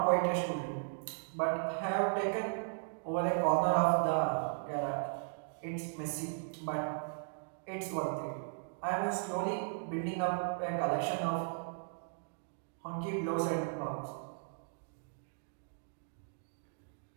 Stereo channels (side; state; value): left; silent; digital silence